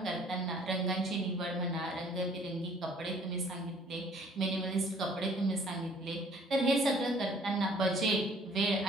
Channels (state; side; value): normal; both; correlation 0.57